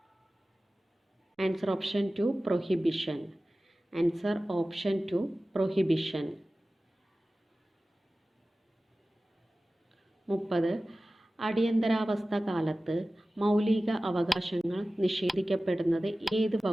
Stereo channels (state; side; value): normal; both; correlation 0.96